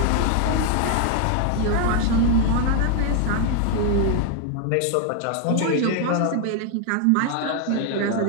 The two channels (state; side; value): different; both; correlation 0.00